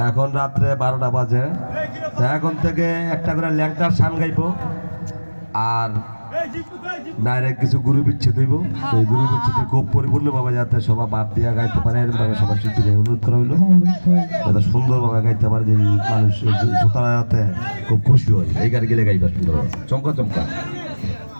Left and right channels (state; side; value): inverted; both; correlation -1.00